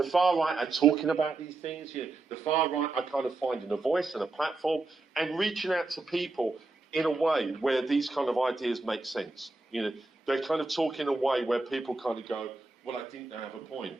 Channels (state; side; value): quieter; left; 3.4 dB